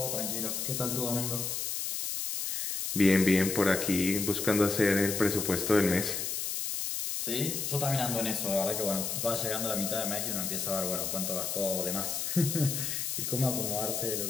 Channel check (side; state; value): left; noise; hiss, 2 dB below the sound